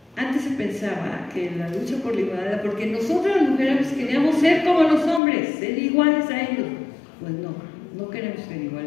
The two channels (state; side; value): drops out; right; at 5.2 s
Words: antes se pensaba que la lucha por la igualdad, porque nosotros las mujeres queríamos ser como los hombres, ser iguales a ellos. Pues no, no queremos ser